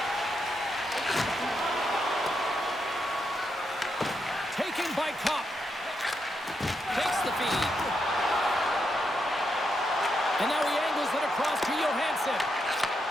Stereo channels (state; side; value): normal; both; correlation 0.82